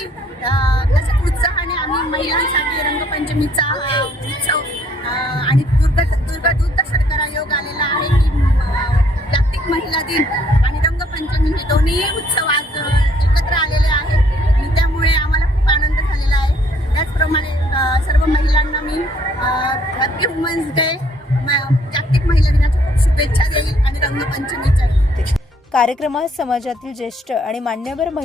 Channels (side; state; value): both; normal; correlation 0.65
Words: तसंच उत्साहाने आम्ही महिलांसाठी रंगपंचमीचा हा उत्सव आणि दुर्गादूत शर्करा योग आलेला आहे की जागतिक महिला दिन आणि रंगपंचमी हे दोन्ही उत्सव आज एकत्र आलेले आहेत आणि त्यामुळे आम्हाला खूप आनंद झालेला आहे। त्याचप्रमाणे सर्व महिलांना मी हॅपी वुमन्स डे जागतिक महिला दिनाच्या खूप शुभेच्छा देईल आणि रंगपंचमीच्या। कार्यक्रमात समाजातील ज्येष्ठ आणि मान्यवर